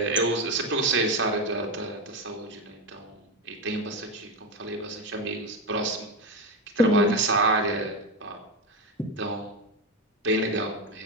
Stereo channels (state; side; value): normal; both; correlation 0.14